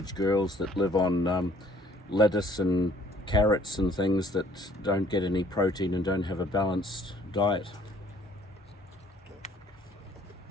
girls that live on lettuce and carrots and things that don't get any protein and don't have a balanced diet.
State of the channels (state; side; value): normal; both; correlation 0.59